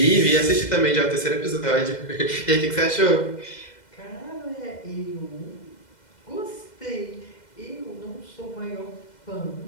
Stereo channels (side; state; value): right; late; 2.1 ms